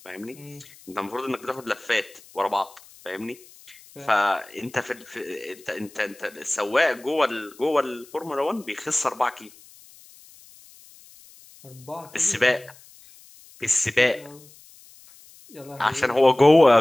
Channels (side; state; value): left; noise; hiss, 24 dB below the sound